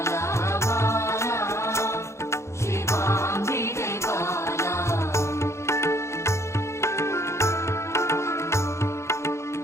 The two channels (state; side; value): late; right; 0.13 ms